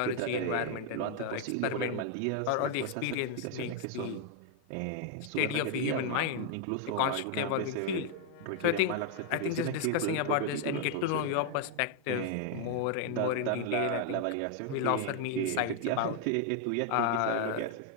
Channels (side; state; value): both; different; correlation 0.00